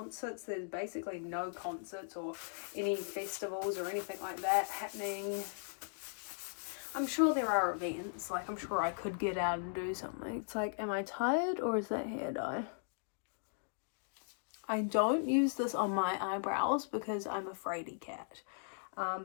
there's basically no concerts or any festivals or anything like that happening. I'm sure there are events. Like, I'm sure I could get out and do something. It's like, am I tired or is that hair dye? I don't use this on my eyebrows because I'm a fraidy cat.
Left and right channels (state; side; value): silent; right; digital silence